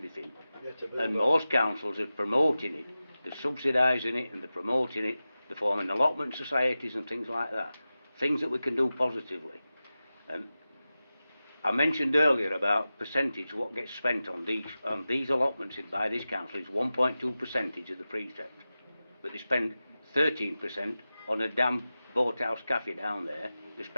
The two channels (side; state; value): both; inverted; correlation -0.94